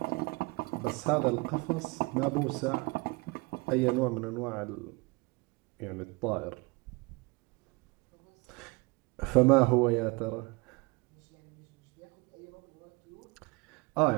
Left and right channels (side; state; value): left; quieter; 26.2 dB